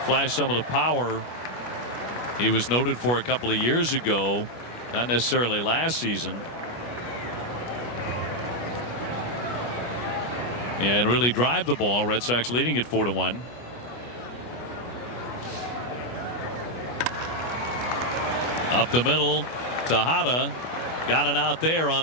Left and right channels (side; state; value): right; late; 25 ms